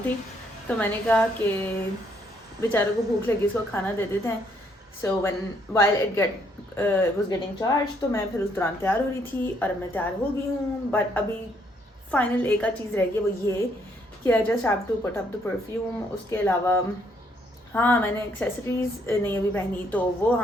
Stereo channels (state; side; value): normal; both; correlation 0.70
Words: थी तो मैंने कहा कि बेचारों को भूख लगी, इसको खाना दे देते हैं। So when while it was getting charge तो मैं फिर उस दौरान तैयार हो रही थी और अब मैं तैयार हो गई हूँ। बट अभी फाइनल एक आध चीज़ रह गई, वो ये कि I just have to put up the perfume. उसके अलावा हाँ, मैंने एक्सेसरीज नहीं अभी पहनी तो वो